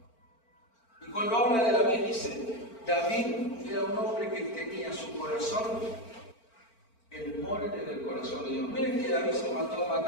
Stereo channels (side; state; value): right; late; 4.4 ms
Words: Y cuando habla de David, dice, David era un hombre que tenía su corazón, el molde del corazón de Dios. Miren que David se mató a